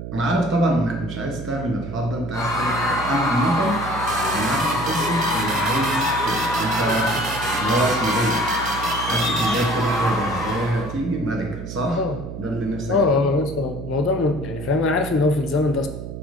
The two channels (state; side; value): noise; right; hum, 9 dB below the sound